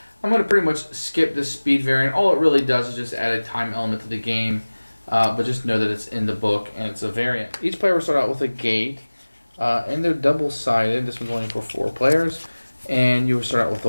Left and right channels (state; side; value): inverted; both; correlation -1.00